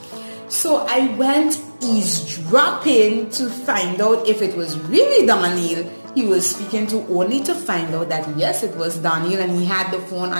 So I went eavesdropping to find out if it was really Daniel he was speaking to, only to find out that yes, it was Daniel, and he had the phone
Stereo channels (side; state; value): both; inverted; correlation -1.00